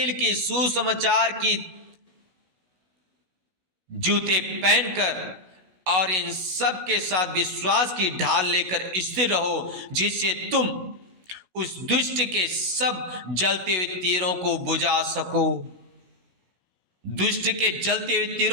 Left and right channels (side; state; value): left; late; 16 ms